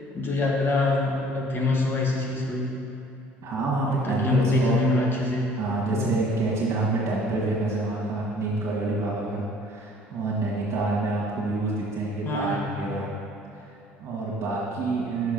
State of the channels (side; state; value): both; normal; correlation 0.54